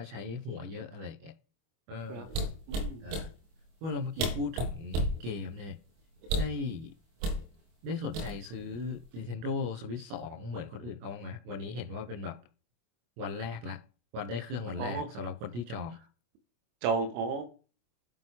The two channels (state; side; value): late; left; 25 ms